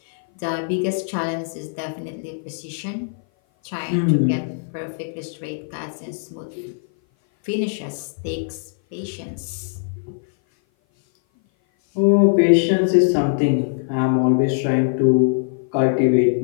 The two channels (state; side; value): silent; right; 57 dB below the other